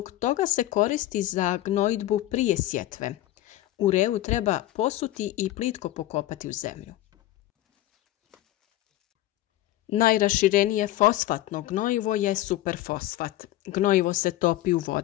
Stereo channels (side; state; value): right; quieter; 15.1 dB